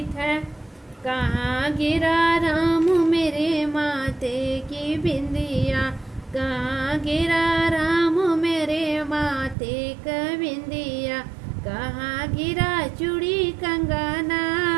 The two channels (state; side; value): drops out; left; at 9.6 s